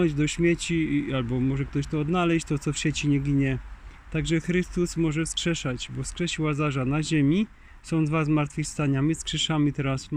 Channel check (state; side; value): identical; both; correlation 1.00